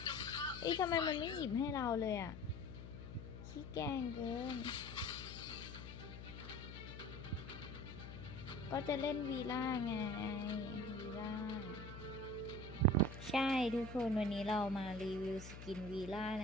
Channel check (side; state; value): left; noise; hum, 11 dB below the sound